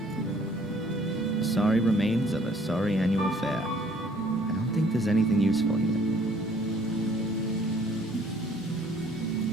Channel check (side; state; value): both; normal; correlation 0.59